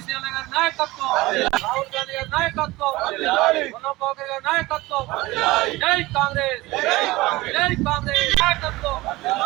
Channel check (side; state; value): left; quieter; 19.9 dB